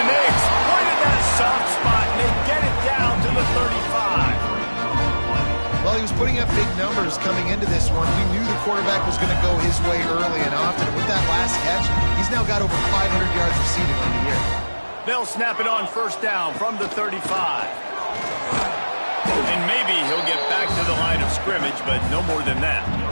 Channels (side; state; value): both; inverted; correlation -1.00